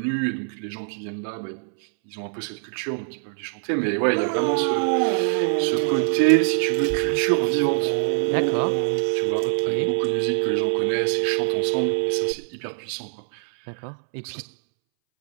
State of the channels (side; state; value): left; silent; 63 dB below the other